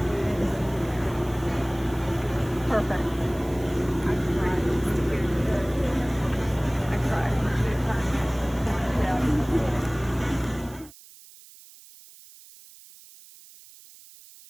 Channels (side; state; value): right; noise; hiss, 21 dB below the sound